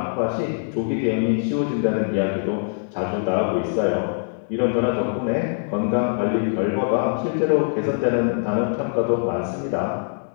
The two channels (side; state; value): right; silent; digital silence